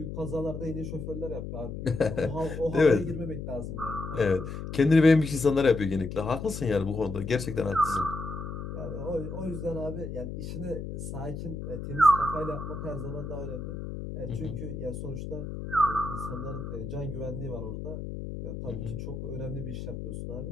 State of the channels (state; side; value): noise; left; hum, 7 dB below the sound